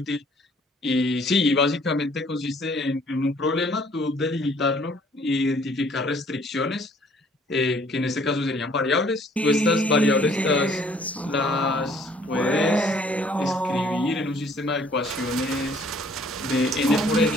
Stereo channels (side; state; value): both; normal; correlation 0.59